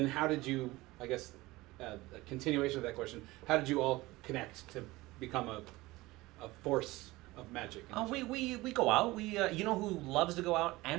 how did you, I guess, a continuation of that question, how did you all connect to become a force of magic? We go out. You know who loves to go out?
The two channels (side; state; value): left; quieter; 19.9 dB